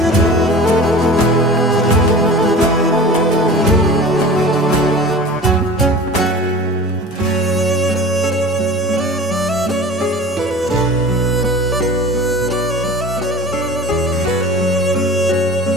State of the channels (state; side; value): normal; both; correlation 0.38